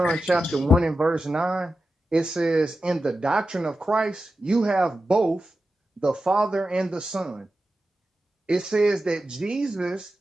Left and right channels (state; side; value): normal; both; correlation 0.92